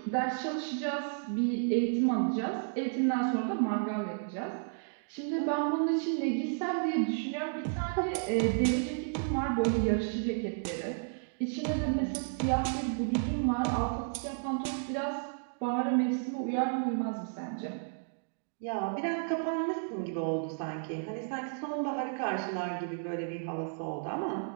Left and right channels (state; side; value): silent; left; digital silence